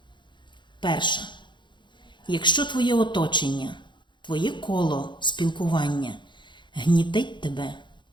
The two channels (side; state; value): right; late; 0.23 ms